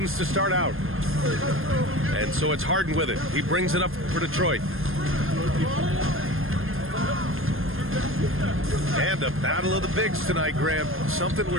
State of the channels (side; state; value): left; late; 0.60 ms